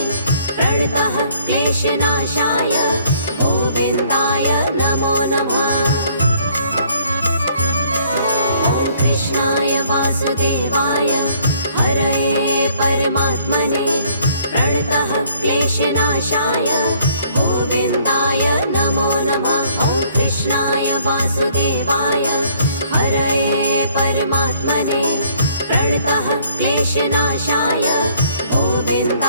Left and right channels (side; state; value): both; inverted; correlation -0.62